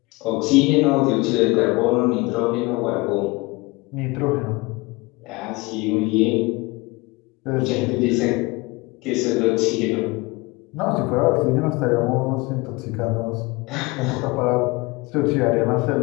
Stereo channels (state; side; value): quieter; right; 24.2 dB